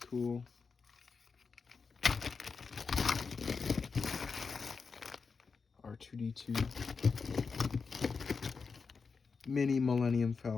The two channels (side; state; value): right; quieter; 5.1 dB